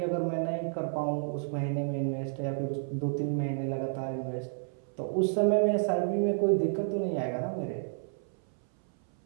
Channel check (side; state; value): left; silent; 57 dB below the other